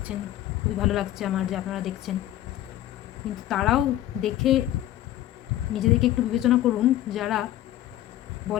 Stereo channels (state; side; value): quieter; right; 13.5 dB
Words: খুবই ভালো লাগছে আমার যে আপনারা দেখছেন, কিন্তু তারাও দেখে নিজেদেরকে একটু বিবেচনা করুন, যারা